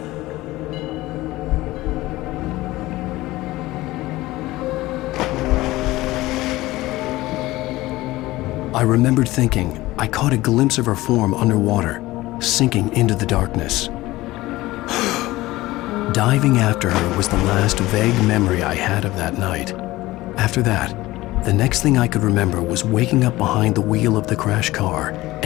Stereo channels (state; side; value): quieter; right; 18.2 dB